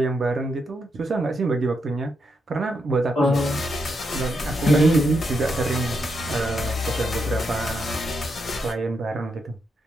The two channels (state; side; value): normal; both; correlation 0.82